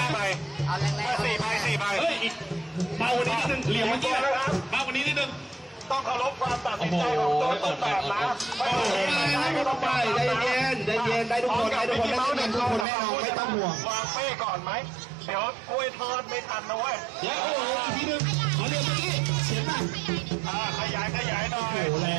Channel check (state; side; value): drops out; left; at 12.9 s